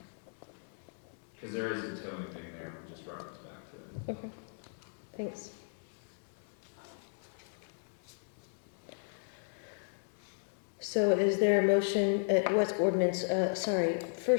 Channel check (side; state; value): right; silent; digital silence